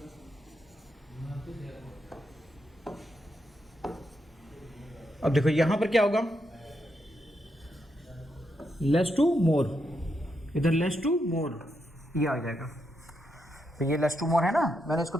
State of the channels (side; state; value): both; normal; correlation 0.82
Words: अब देखो यहां पर क्या होगा, लेस टू मोर, इधर लेस टू मोर ये आ जाएगा। तो ये लेस टू मोर है ना, मैंने इसको